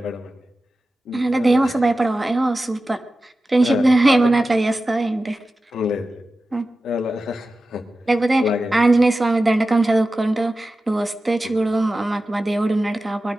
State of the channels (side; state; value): both; normal; correlation 0.94